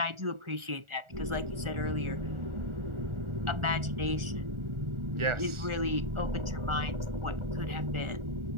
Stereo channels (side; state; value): left; late; 1.4 ms